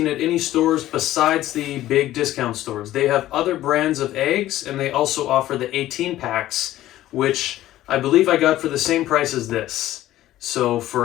at any stores besides the big discount stores. They have other brands of eggs, and they also offer the 18 packs, which I believe I got for the same price as this. So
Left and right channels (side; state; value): right; quieter; 14.4 dB